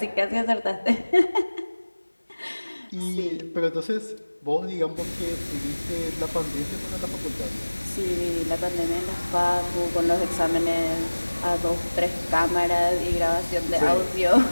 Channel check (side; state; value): both; inverted; correlation -1.00